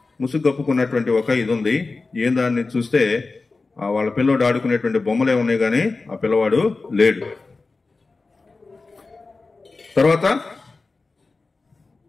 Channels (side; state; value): right; quieter; 3.8 dB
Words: ముసుగు కప్పుకున్నటువంటి ఒక ఇది ఉంది. ఏం దాన్ని చూస్తే వాళ్ళ పిల్లోడు ఆడుకునేటువంటి బొమ్మలే ఉన్నాయి, కానీ ఆ పిల్లవాడు లేడు. తర్వాత